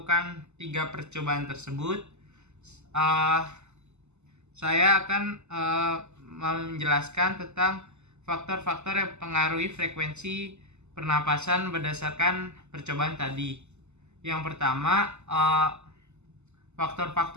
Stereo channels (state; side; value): late; left; 0.82 ms